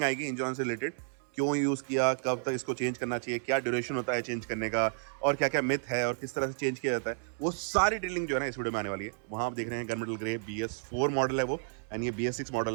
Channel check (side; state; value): left; silent; 57 dB below the other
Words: आएगी इंजन ऑयल से रिलेटेड। क्यों यूज़ किया, कब तक इसको चेंज करना चाहिए, क्या ड्यूरेशन होता है चेंज करने का, और क्या क्या मिथ है और किस तरह से चेंज किया जाता है, वो सारी डिटेलिंग जो है ना इस वीडियो में आने वाली है। वहाँ आप देख रहे हैं गनमेटल ग्रे BS4 मॉडल है वो, एंड ये BS6